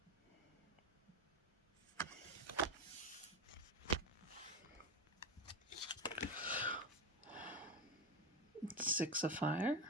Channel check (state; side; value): normal; both; correlation 0.17